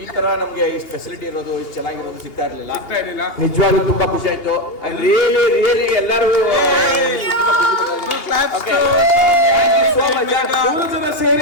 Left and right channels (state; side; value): late; right; 2.8 ms